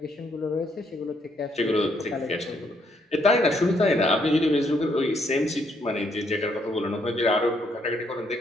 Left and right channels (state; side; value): normal; both; correlation 0.72